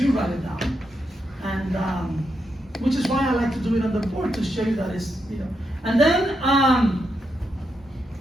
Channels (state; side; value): normal; both; correlation 0.83